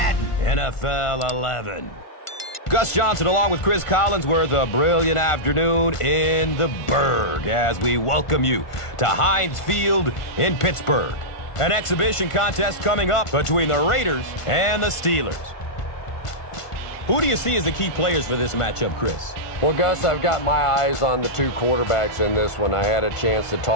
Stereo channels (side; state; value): right; late; 1.5 ms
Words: NFL 11. Gus Johnson along with Chris Collinsworth, a brilliant afternoon in the Berg as we welcome you to Heinz Field in Pittsburgh. An exhibition contest coming up between the Raiders and the Steelers. Who do you see as the key players for this matchup, Chris? Well, Gus, I've got my eyes on the two quarterbacks in this one. I had a chance to